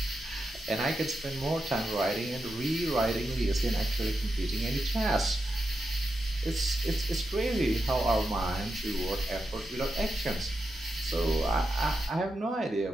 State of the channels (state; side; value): normal; both; correlation 0.87